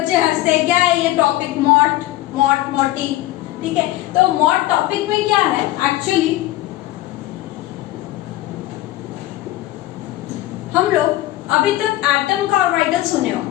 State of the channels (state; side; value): quieter; right; 16.2 dB